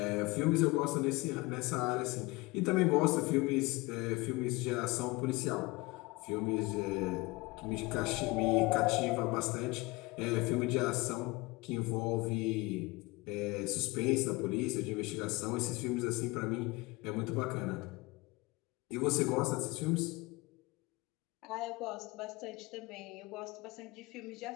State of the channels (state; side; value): quieter; right; 23.3 dB